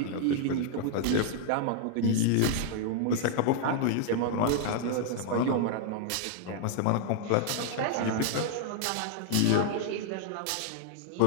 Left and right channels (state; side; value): different; both; correlation 0.00